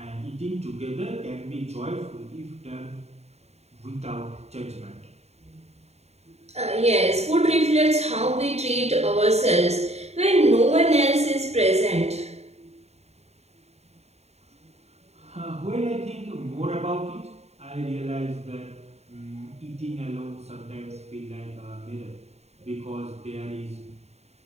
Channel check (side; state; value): left; late; 0.31 ms